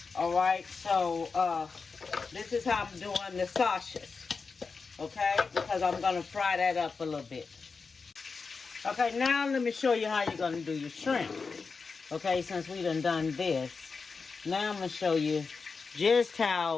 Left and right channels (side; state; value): right; quieter; 4.8 dB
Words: All right, so this is how I'm doing the sausages. Okay, because I'm going to fry that up a little bit. Okay, now let me show you how you're going to do your shrimp. Okay, since we done this, now I'm going to show you just